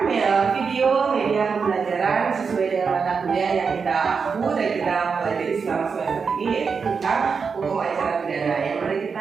video media pembelajaran sesuai dengan mata kuliah yang kita aku dan kita pelajari selama semester ini, yaitu tentang hukum acara pidana. Yang mari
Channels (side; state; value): left; quieter; 5.5 dB